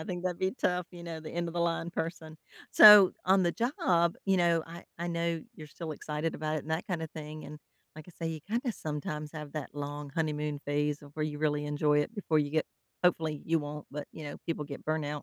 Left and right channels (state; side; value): identical; both; correlation 1.00